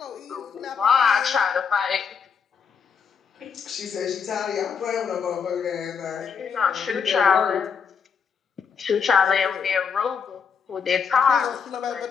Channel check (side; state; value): right; quieter; 6.3 dB